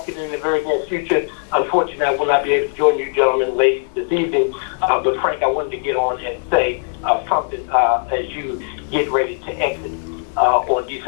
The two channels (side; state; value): right; silent; digital silence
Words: in the very near future. Unfortunately, I will not be able to join you gentlemen ladies this evening. But Frank, I wanted to get on and say something as you get ready to exit on